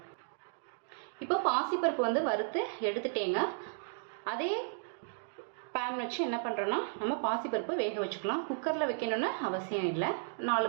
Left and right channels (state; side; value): silent; left; digital silence